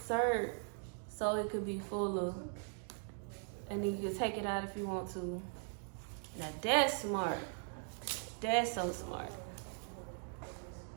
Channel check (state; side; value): silent; left; 51 dB below the other